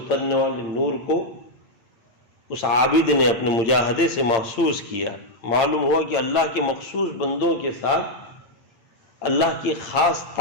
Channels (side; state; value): right; late; 8.8 ms